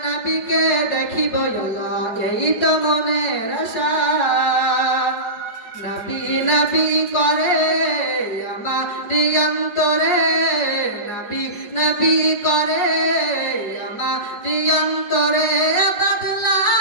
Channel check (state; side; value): late; right; 4.9 ms